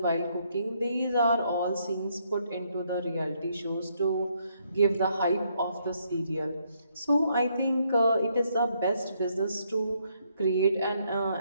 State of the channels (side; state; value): both; inverted; correlation -0.73